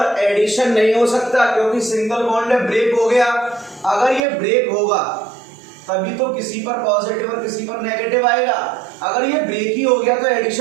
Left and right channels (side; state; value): left; drops out; at 4.2 s